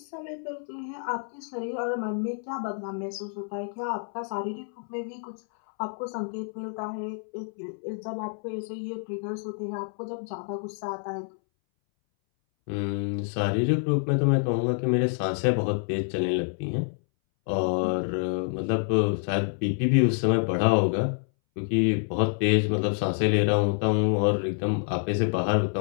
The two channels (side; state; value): right; silent; 60 dB below the other